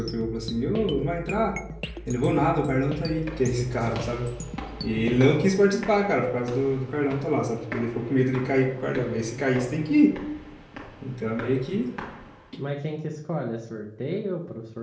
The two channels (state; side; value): identical; both; correlation 1.00